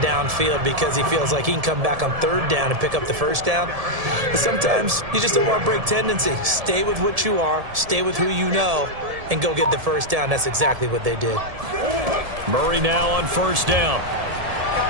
downfield because he feels like he can come back on 3rd down and pick up the 1st down. But sometimes you just don't want to break tendency. Stay with what you are, stay with who you know, and go get the 1st down. That's exactly what they did. Murray now on 1st down.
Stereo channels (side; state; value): left; late; 1.7 ms